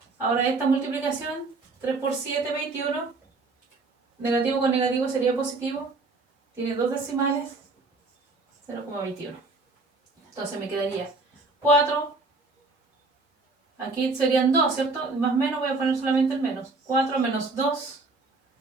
ahora esta multiplicación, 3 por 7, 21, negativo con negativo sería positivo, tiene 2 decimales, 0,21. Entonces me quedaría 4, aquí serían 2, ¿cierto? Más menos, voy a poner solamente el menos. 4 menos 2,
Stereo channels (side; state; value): left; quieter; 3.6 dB